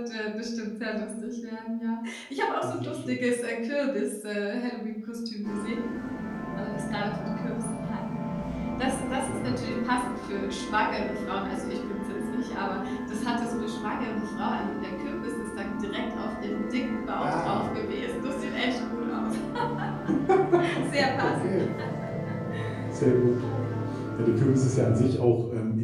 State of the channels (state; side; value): identical; both; correlation 1.00